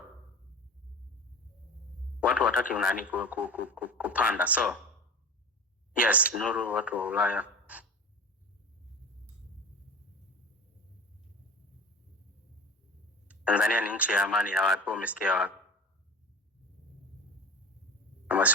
watu wataki unani kupanda. So yes, Nuru, watu wa Ulaya Tanzania ni nchi ya amani ya watu, umesikia wapi? Kama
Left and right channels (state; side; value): normal; both; correlation 0.33